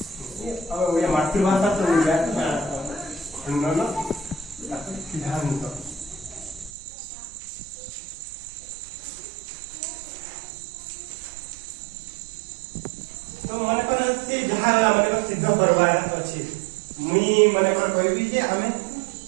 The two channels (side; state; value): left; drops out; at 6.7 s